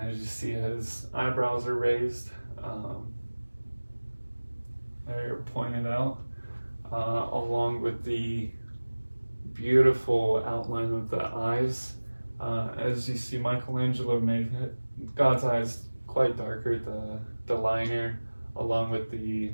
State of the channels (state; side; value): inverted; both; correlation -1.00